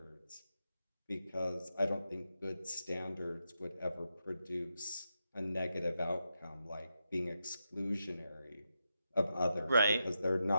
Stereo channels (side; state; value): both; inverted; correlation -0.86